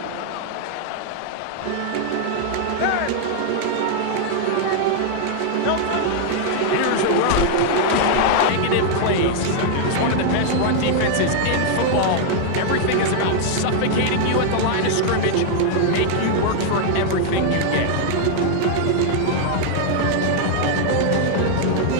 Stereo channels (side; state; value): both; different; correlation 0.00